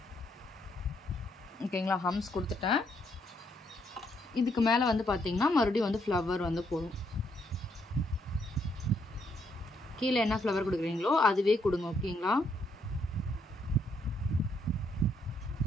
ஓகேங்களா. ஹம்ஸ் கொடுத்துட்டேன். இதுக்கு மேலே வந்து பார்த்திங்கன்னா மறுபடியும் வந்து ஃப்ளவர் வந்து போடும். கீழே என்ன ஃப்ளவர் கொடுக்குறீங்களோ அதுவே கொடுங்க ஓகேங்களா.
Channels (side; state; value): both; normal; correlation 0.74